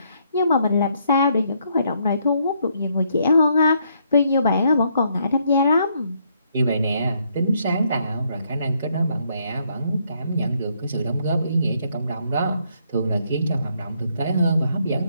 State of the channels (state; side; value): inverted; both; correlation -0.72